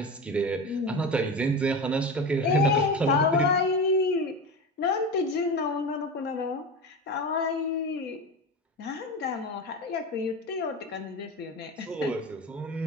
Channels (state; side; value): normal; both; correlation 0.25